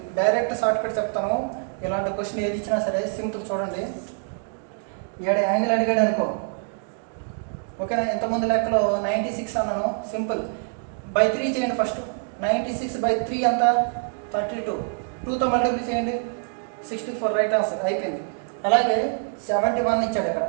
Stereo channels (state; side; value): silent; left; 58 dB below the other